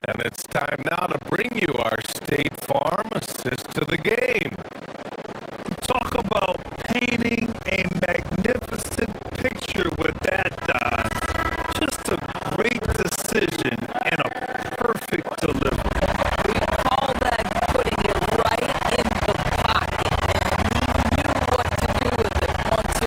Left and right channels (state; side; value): identical; both; correlation 1.00